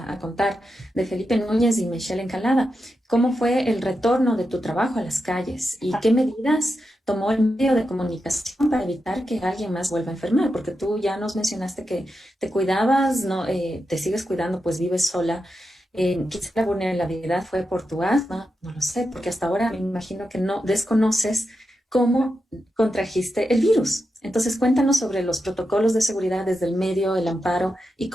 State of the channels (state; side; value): normal; both; correlation 0.88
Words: contar de Felipe Núñez y Michelle Encalada. ¿Cómo fue el retorno de tu trabajo a las calles y qué medidas tomó el medio de comunicación para evitar que alguien más vuelva a enfermar? Porque tú ya nos mencionaste que te cuidabas, no, te sigues cuidando, pues vives sola. Quizá la vulnerabilidad fue por tu asma, no lo sé, porque hasta ahora me imagino que no desconoces cómo contrajiste el virus. Entonces, cuéntanos sobre los protocolos de seguridad desde el medio, el amparo y